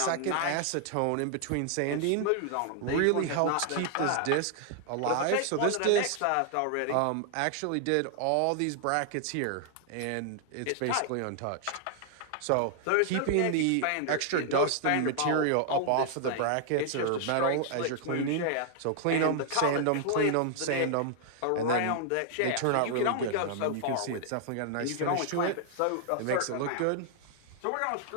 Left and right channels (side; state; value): both; different; correlation 0.00